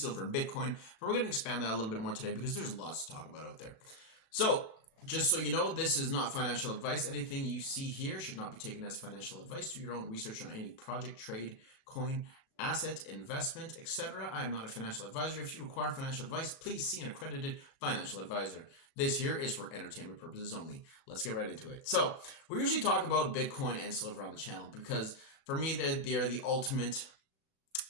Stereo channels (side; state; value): right; late; 37 ms